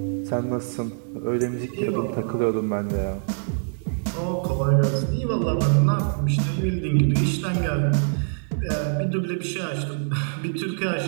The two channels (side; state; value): left; silent; digital silence